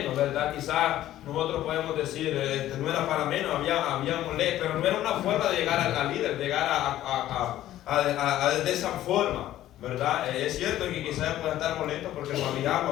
¿verdad? Quizás nosotros podemos decir, no era para menos, había molesto, pero no era una forma de llegar al líder, llegar de esa forma, ¿verdad? Es cierto que quizás pueden estar molestos porque no había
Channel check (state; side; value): quieter; right; 13.4 dB